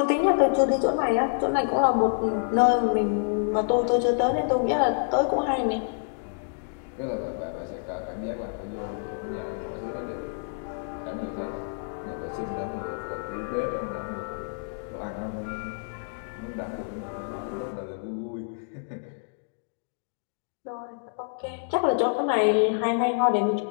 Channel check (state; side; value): silent; right; digital silence